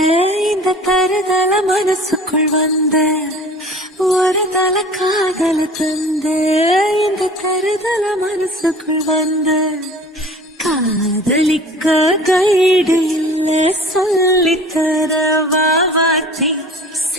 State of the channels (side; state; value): both; normal; correlation 0.44